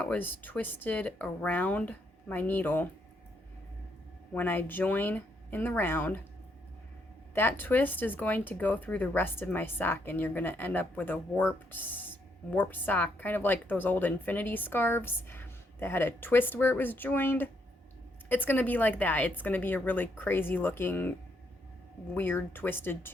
was twisted around my needle when I join in the round, that twist is going to go through the rest of my sock, and you're going to end up with a warped sock, kind of like those old infinity scarves that had a twist where it was joined. It's going to be like that. It's going to be a really crazy looking, weird twisted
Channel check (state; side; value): normal; both; correlation 0.75